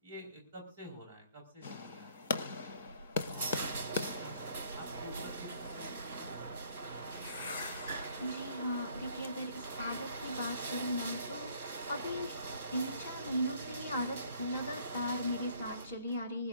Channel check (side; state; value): both; inverted; correlation -0.62